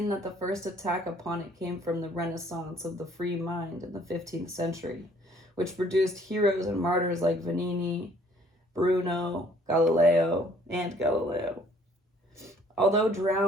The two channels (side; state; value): both; normal; correlation 0.59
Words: that the first attack upon it came from the Renaissance of the free mind in the 15th century, which produced heroes and martyrs like Vanini, Bruno, Galileo. Although